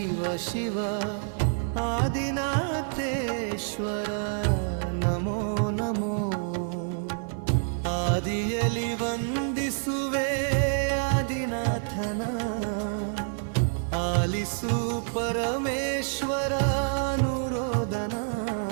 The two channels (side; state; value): left; silent; 60 dB below the other